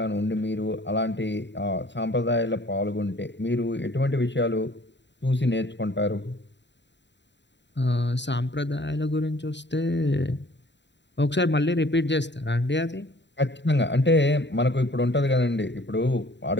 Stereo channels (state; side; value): late; right; 0.52 ms